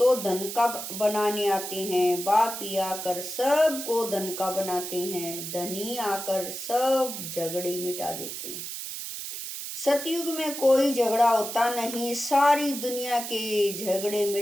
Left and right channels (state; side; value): noise; right; hiss, 7 dB below the sound